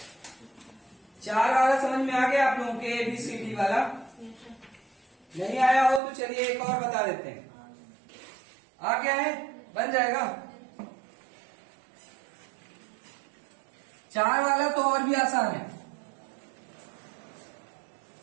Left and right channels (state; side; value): drops out; left; at 6.0 s